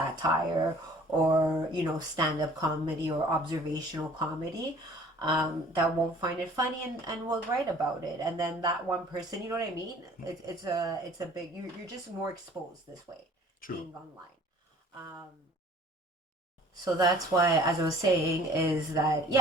or, stand-up comedy or observational comedy, that won't find it funny and will write about it. And then that one person, you know what I mean? It's a big, you're just more exposed this way, True. being online. Um, so that's why, as I was saying, is that,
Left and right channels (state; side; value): normal; both; correlation 0.52